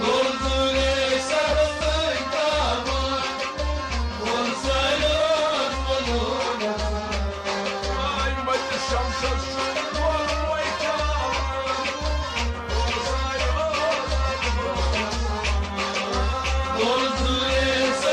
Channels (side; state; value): both; identical; correlation 1.00